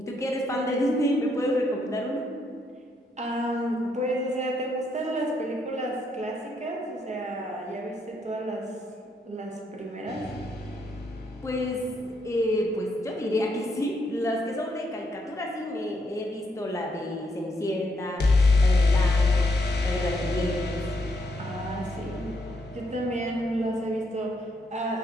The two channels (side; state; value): both; normal; correlation 0.75